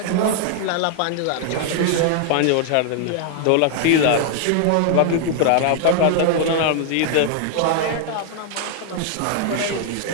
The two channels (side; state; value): both; different; correlation 0.00